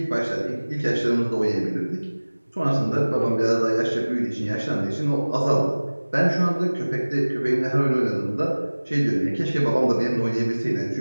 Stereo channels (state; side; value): inverted; both; correlation -1.00